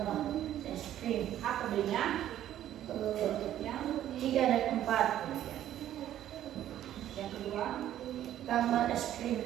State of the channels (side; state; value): left; quieter; 11.9 dB